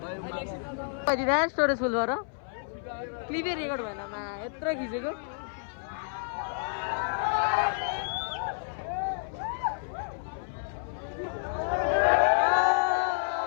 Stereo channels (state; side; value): silent; right; 58 dB below the other